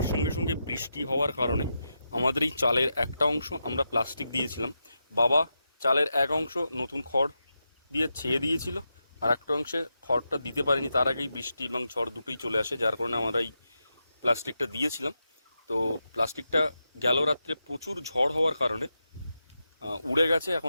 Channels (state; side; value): inverted; both; correlation -0.87